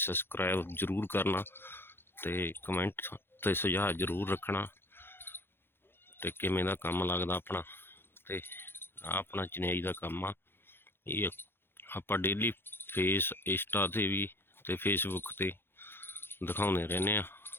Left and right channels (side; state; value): right; late; 0.11 ms